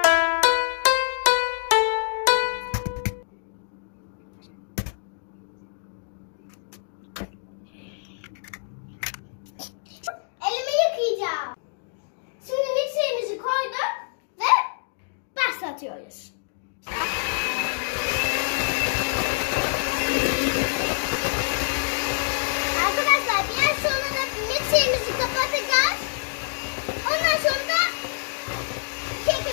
Elimi yıkayacağım. Şimdi mikserimizi koyduk ve başlatıyoruz. Arkadaşlar biraz sonra da mikserimizi kapatacağız. Ondan sonra da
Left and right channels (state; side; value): silent; right; digital silence